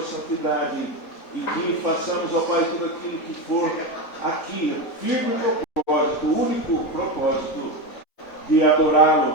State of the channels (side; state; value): right; late; 3.9 ms